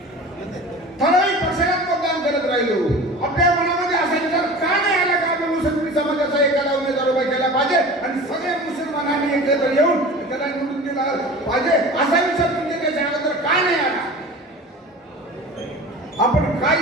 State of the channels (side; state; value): both; normal; correlation 0.37